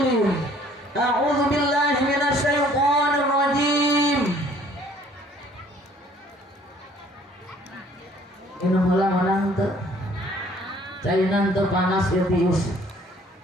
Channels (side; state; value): both; normal; correlation 0.58